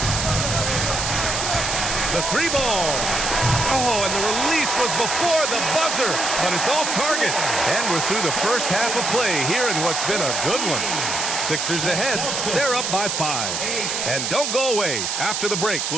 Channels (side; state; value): right; noise; hiss, 1 dB below the sound